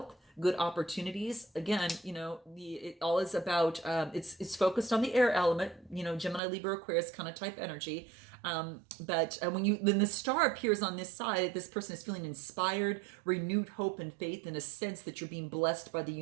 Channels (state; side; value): drops out; left; at 6.4 s